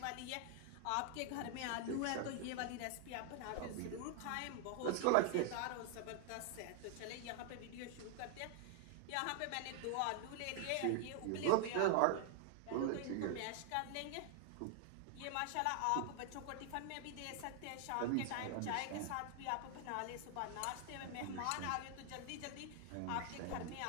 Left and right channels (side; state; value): both; different; correlation 0.00